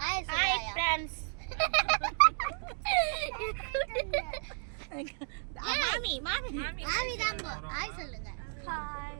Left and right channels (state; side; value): silent; left; 56 dB below the other